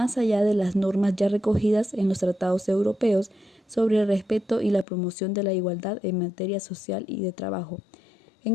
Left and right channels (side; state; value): right; drops out; at 4.9 s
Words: allá de las normas ya recogidas en los tratados europeos sobre el respeto y la promoción de la igualdad en materia social y de trabajo.